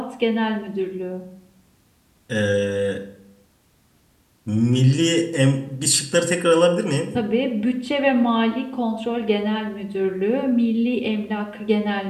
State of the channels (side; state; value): both; identical; correlation 1.00